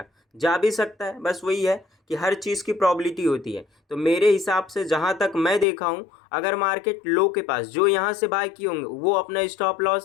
जा भी सकता है, बस वही है कि हर चीज़ की प्रॉबिलिटी होती है। तो मेरे हिसाब से जहाँ तक मैं देखा हूँ, अगर मार्केट लो के पास, जो यहाँ से बाय किए होंगे वो अपना स्टॉप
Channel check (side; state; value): right; drops out; at 5.7 s